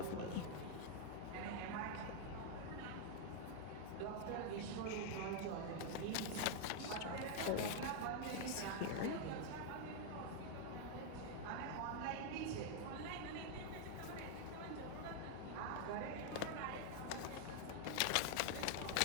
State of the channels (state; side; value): different; both; correlation 0.00